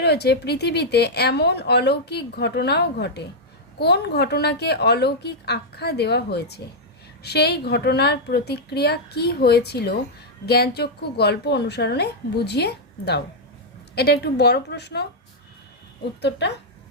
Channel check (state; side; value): normal; both; correlation -0.04